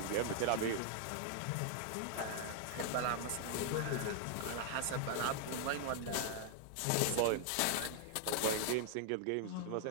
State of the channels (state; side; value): different; both; correlation 0.00